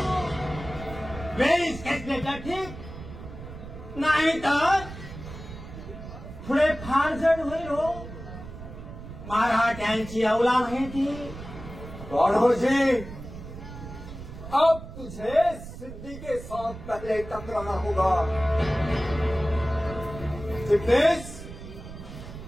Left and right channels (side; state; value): right; noise; rumble, 12 dB below the sound